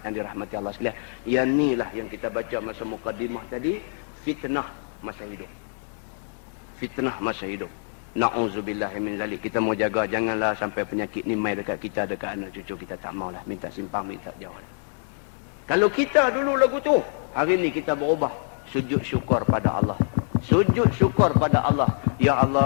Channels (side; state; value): right; silent; 61 dB below the other